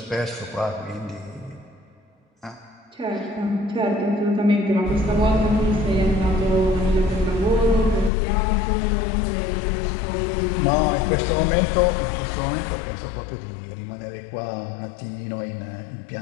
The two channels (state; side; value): drops out; right; at 8.1 s